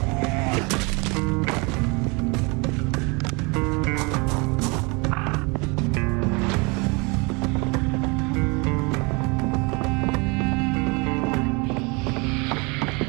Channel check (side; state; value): left; quieter; 29.0 dB